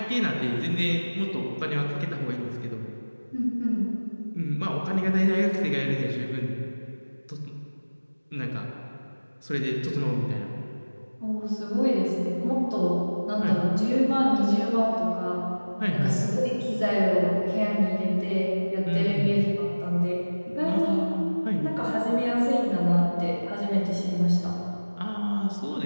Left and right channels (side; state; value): both; inverted; correlation -1.00